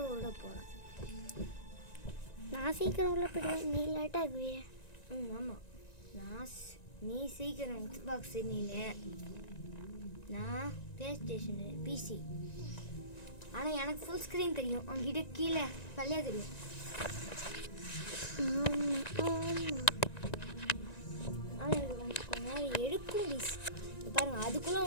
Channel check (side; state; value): right; late; 1.9 ms